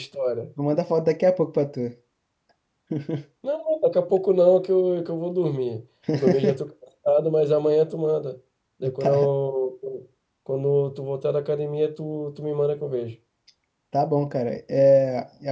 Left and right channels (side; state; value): both; identical; correlation 1.00